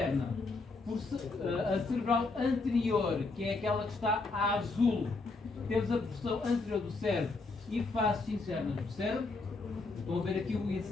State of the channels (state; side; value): quieter; right; 3.7 dB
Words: a cerebral anterior, que é aquela que está a azul, temos a porção anterior do cérebro e faces internas do cérebro. Estão a ver aqui o